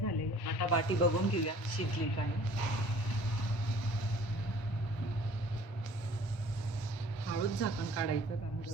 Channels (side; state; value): right; late; 1.2 ms